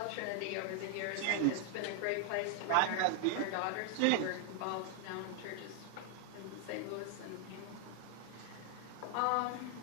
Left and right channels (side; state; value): both; different; correlation 0.00